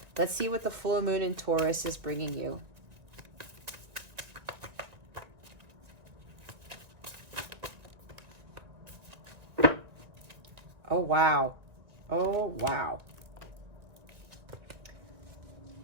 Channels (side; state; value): left; late; 1.9 ms